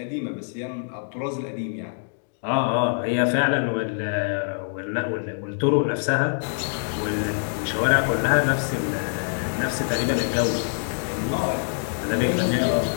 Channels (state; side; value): silent; right; digital silence